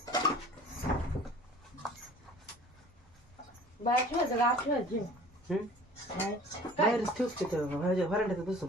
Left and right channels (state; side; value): normal; both; correlation 0.47